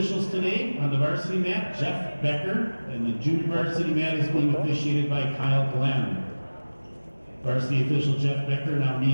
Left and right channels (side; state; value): both; inverted; correlation -1.00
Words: today on the varsity mat, Jeff Becker, and the junior varsity mat is being officiated by Kyle Glenn. Varsity official Jeff Becker now